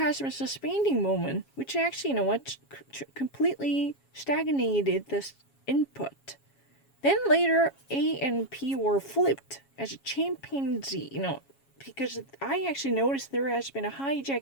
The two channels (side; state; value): right; late; 7.3 ms